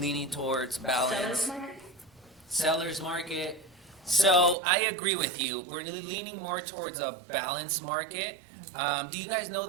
towards balance. Seller's market. So I agree with you. We're leaning more towards a balanced market. Do you guys know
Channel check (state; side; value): drops out; left; at 4.5 s